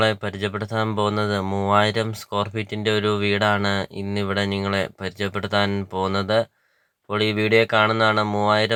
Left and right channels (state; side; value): identical; both; correlation 1.00